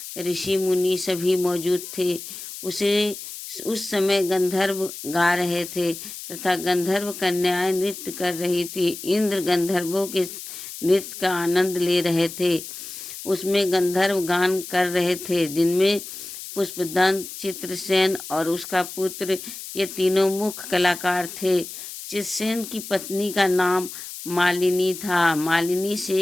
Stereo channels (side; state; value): left; noise; hiss, 11 dB below the sound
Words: ऋषि मुनि सभी मौजूद थे। उस समय गंधर्व गा रहे थे तथा गंधर्व कन्याएं नृत्य कर रही थी। इंद्र गंधर्वों के नृत्य का आनंद ले रहे थे। उसमें गंधर्व गान कर रहे थे, जिनमें पुष्पदंत, चित्रसेन और उसका पुत्र, ये तीनों मुख्य कलाकार थे। चित्रसेन की पत्नी का नाम मालिनी था। मालिनी से